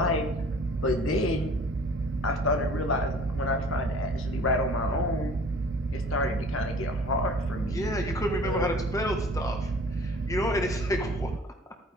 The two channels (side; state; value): both; normal; correlation 0.49